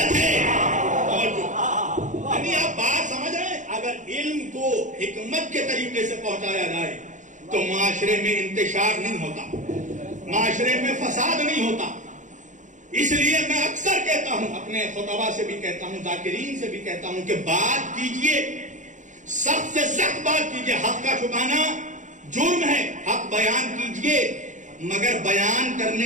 ہے. یعنی آپ بات سمجھ رہے ہیں, دین کو حکمت کے طریقے سے پہنچایا جائے تو معاشرے میں انتشار نہیں ہوتا، معاشرے میں فساد نہیں ہوتا. اس لیے میں اکثر کہتا ہوں، اپنے خطبہ سے بھی کہتا ہوں، ذاکرین سے بھی کہتا ہوں کہ بات کیجئے، سخت سے سخت بات کیجئے. حق کا چھپانا جرم ہے، حق بیان کیجئے، مگر بیان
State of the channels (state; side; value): late; left; 0.36 ms